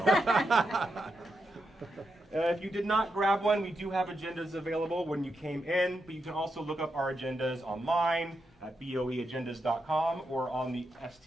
If you did not grab one, we do have agendas available when you came in, but you can also look up our agendas online at boeagendas.com or on the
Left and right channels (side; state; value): both; normal; correlation 0.85